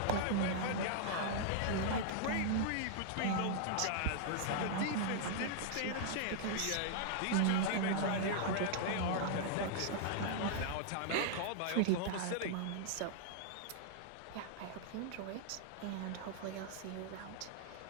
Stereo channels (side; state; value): both; different; correlation -0.01